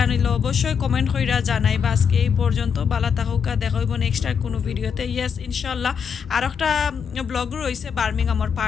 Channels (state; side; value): quieter; right; 6.8 dB